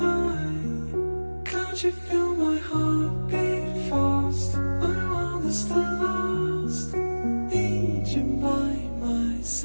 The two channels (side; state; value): both; inverted; correlation -1.00